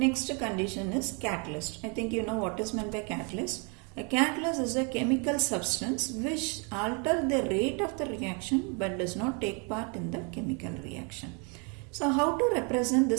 condition is catalyst. I think you know what is meant by catalyst. A catalyst is a chemical substance which alters the rate of the reaction but does not take part in the chemical reaction. So how to represent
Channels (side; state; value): left; quieter; 34.8 dB